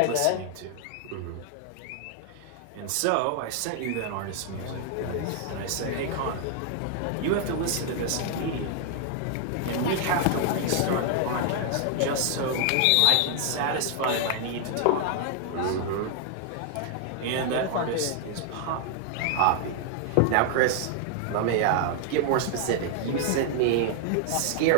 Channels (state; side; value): different; both; correlation 0.00